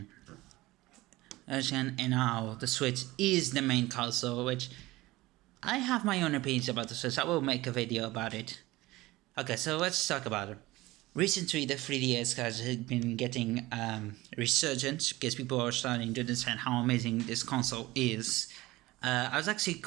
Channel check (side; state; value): left; quieter; 19.2 dB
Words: And now the Switch is the main console, which I have my own opinions about the Switch. I will make a video about it. Okay, so let's talk about it. Recently, the 3DS has been getting resurgence because people are starting to understand how amazing this console is. I was actually